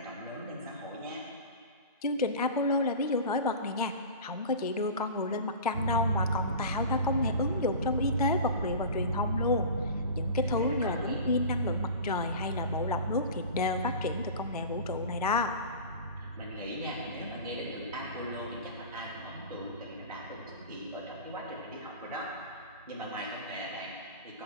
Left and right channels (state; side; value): inverted; both; correlation -0.35